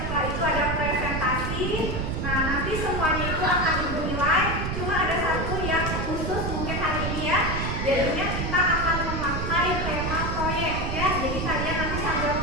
itu ada presentasi. Nah, nanti semuanya itu akan ibu nilai. Cuma ada satu yang khusus mungkin hari ini ya. Jadinya kita akan memakai tema proyek ya. Jadi kalian nanti sambil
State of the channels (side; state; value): right; noise; rumble, 2 dB below the sound